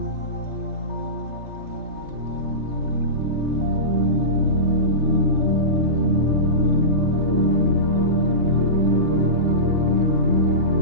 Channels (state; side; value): late; left; 3.3 ms